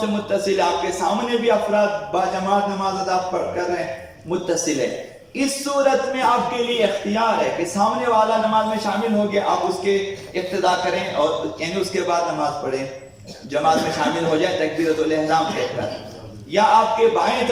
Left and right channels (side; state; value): both; identical; correlation 1.00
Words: متصل ہے، آپ کے سامنے بھی افراد با جماعت نماز ادا کر رہے ہیں متصل ہے۔ اس صورت میں آپ کے لیے اختیار ہے کہ سامنے والا نماز میں شامل ہو گیا، آپ اس کے اقتداء کریں اور یعنی اس کے بعد نماز پڑھیں، جماعت میں شامل ہو جائیں تکبیرۃ الاحرام کہہ کر، یا آپ کے بائیں